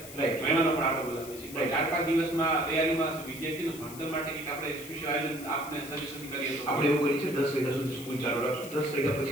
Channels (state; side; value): noise; left; hiss, 14 dB below the sound